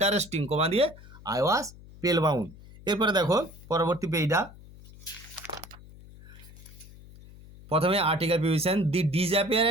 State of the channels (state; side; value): noise; left; hum, 19 dB below the sound